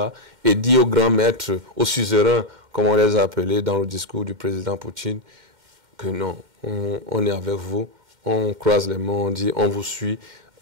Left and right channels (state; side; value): late; left; 2.1 ms